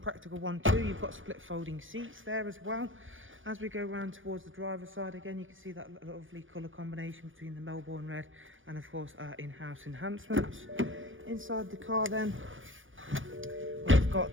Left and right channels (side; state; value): left; late; 0.58 ms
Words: one too. You've got split folding seats there as well. As we go around towards the driver's side again you can see that lovely colour combination between the Melbourne Red and of course our in-house enhancements. Inside the car then we've